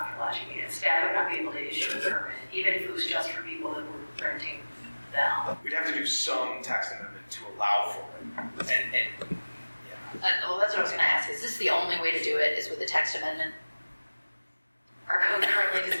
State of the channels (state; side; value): inverted; both; correlation -1.00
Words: for lodging units. Staff would not be able to issue a permit, even if it was just for people that were renting them. We'd have to do some text amendment to allow for it. And yeah. Well, that's what I was gonna ask. Is this the only way to do it, is with a text amendment? Our code currently